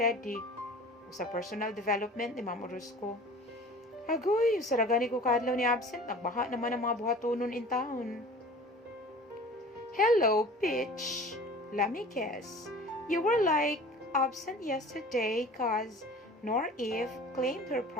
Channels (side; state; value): both; normal; correlation 0.43